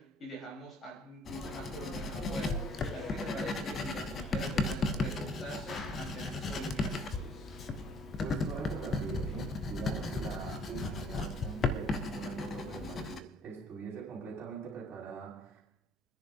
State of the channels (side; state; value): both; normal; correlation 0.58